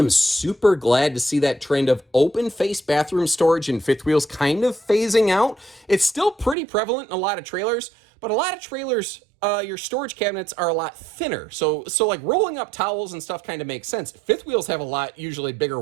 super glad to see that trend of open face bathroom storage in fifth wheels kind of phasing out. It's still pretty prevalent in a lot of trailers, but a lot of trailers, your storage cabinets are a lot thinner. So like rolling up towels and stuff kind of makes sense. Fifth wheels have a lot, usually bigger,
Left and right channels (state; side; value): drops out; left; at 6.6 s